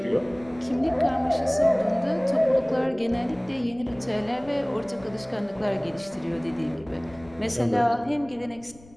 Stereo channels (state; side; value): noise; left; rumble, 24 dB below the sound